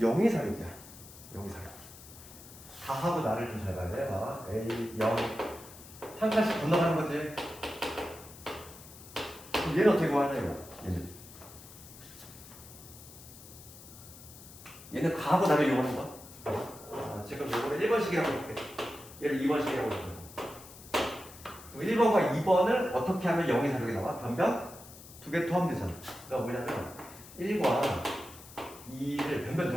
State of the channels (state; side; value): noise; left; hiss, 18 dB below the sound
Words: 사육이야. 0이 사육. 다하고 나를 좀 잘 봐야 돼. 봐봐. A, 0. 한 칸씩 건너가는 거지. 그럼 얘는 어떻게 구하냐, 이거? 얘는 가하고 나를 이용하는 거야. 지금 이거를 1번식이라고 해볼게. 얘를 2번식이라고 해볼게. 1번과 2번을 어떻게 하면 0이 사육이 나와? 변변? 두 개 더하면 되잖아. 그러니까 뭐냐면 1과 2를 변변